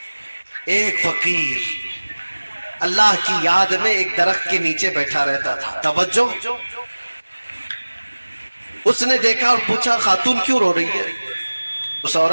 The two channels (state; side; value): inverted; both; correlation -1.00